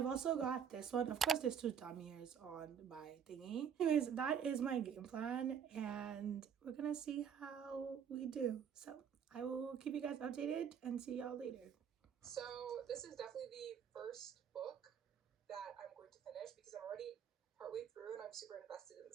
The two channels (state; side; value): quieter; left; 8.0 dB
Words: also got this one. Of course, there's two thumb ears on my thingy. Anyways, that is my game plan, and we're gonna see how we do. So I will keep you guys updated and see y'all later. So this is definitely the first book that I'm going to finish because I'm already partway through and I'm super invested in the